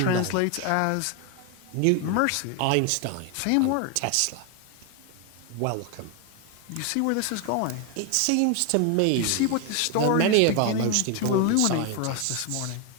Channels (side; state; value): both; different; correlation 0.01